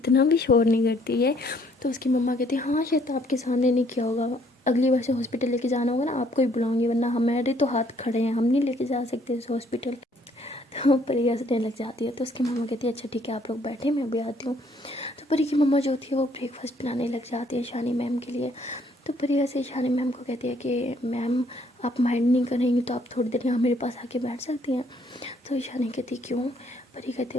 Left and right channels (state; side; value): normal; both; correlation 0.65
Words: भी शोर नहीं करती है। तो उसकी मम्मा कहती हाँ शायद आपके सामने नहीं किया होगा, अगली बार से हॉस्पिटल लेके जाना होगा ना आपको ही बुलाऊंगी, वरना हमारे तो हाथ खड़े हैं, हम नहीं लेके जा सकते इस हॉस्पिटल। तो परी हंसने लग जाती है। तो उसकी मम्मा कहती है अच्छा ठीक है आप लोग बैठे मैं भी आती हूँ। तो परी की मम्मा जो होती है वो ब्रेकफास्ट बनाने लग जाती है ईशानी मैम के लिए। तो परी ऐसे ईशानी मैम को कहती है कि मैम आप माइंड नहीं करेंगी तो आप थोड़ी देर यहाँ मेरे पास आके बैठ सकती हैं। तो ईशानी कहती क्यों। परी कहती